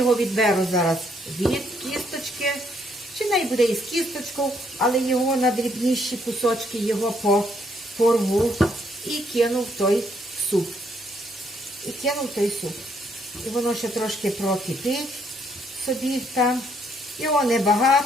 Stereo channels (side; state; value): both; normal; correlation 0.70